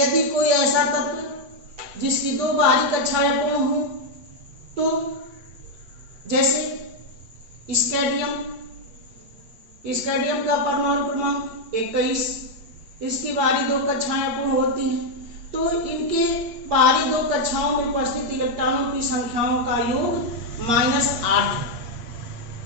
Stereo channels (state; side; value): late; left; 8.6 ms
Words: कोई ऐसा तत्व जिसकी दो बाहरी कक्षाएं अपूर्ण हो, तो जैसे स्कैंडियम का परमाणु क्रमांक 21, इसकी बाहरी दो कक्षाएं अपूर्ण होती हैं, तो इनके बाहरी दो कक्षाओं में उपस्थित इलेक्ट्रॉनों की संख्याओं का योग -8।